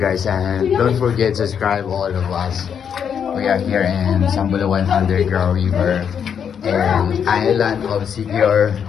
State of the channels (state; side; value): quieter; right; 7.7 dB